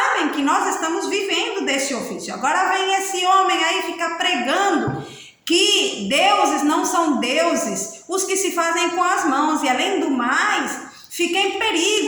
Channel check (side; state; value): both; identical; correlation 1.00